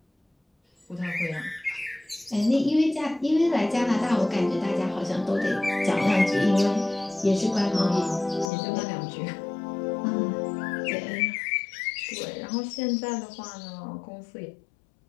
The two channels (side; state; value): right; drops out; at 8.5 s